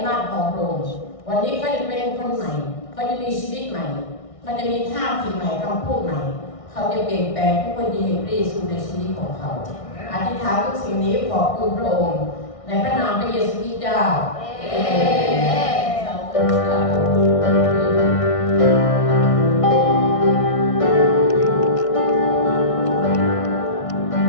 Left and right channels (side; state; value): right; late; 1.6 ms